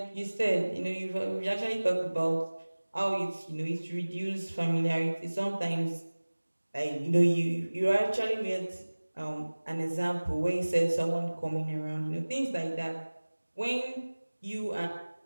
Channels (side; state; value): both; inverted; correlation -1.00